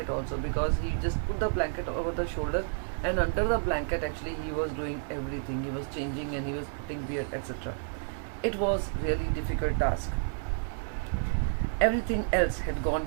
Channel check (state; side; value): silent; left; digital silence